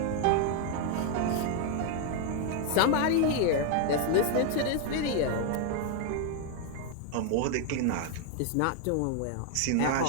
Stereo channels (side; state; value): both; different; correlation 0.00